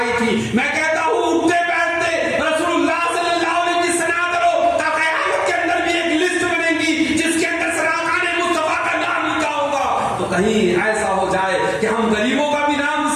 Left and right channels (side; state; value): both; identical; correlation 1.00